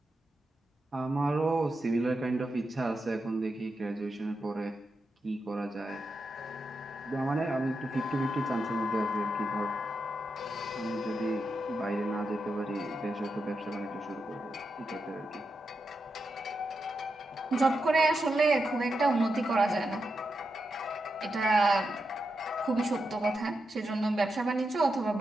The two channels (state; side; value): normal; both; correlation 0.87